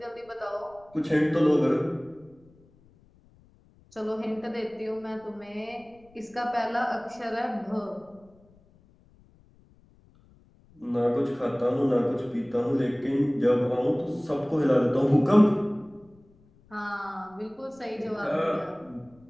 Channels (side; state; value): left; noise; rumble, 29 dB below the sound